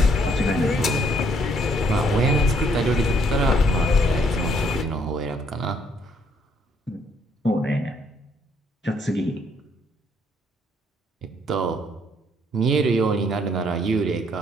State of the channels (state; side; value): normal; both; correlation 0.68